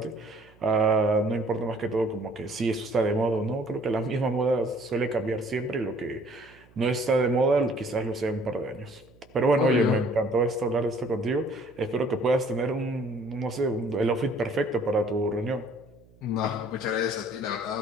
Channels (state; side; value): noise; right; hum, 28 dB below the sound